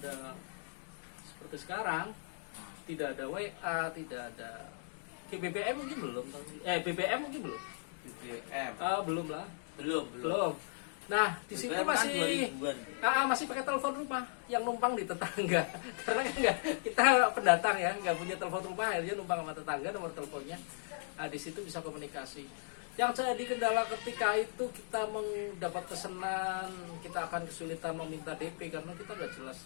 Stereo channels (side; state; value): right; silent; digital silence